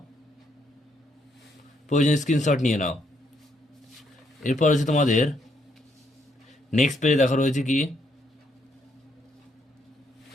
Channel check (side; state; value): both; normal; correlation 0.74